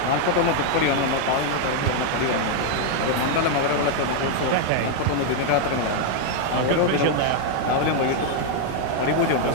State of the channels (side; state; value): both; different; correlation 0.00